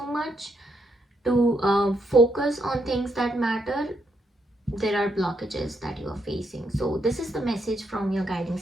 much to focus on things that matter, there are blockages that you are facing. So this is the message from your guiding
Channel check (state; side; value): normal; both; correlation 0.78